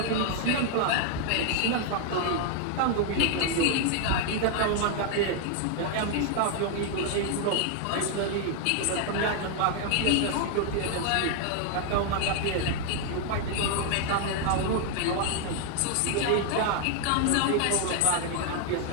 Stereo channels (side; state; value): both; different; correlation 0.00